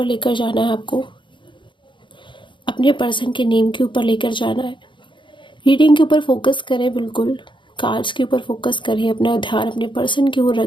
लेकर जाना है, आपको अपने पर्सन के नेम के ऊपर लेकर जाना है। रीडिंग के ऊपर फोकस करें, बिल्कुल कार्ड्स के ऊपर फोकस करें, अपना ध्यान अपने पर्सन की ओर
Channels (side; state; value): right; late; 0.23 ms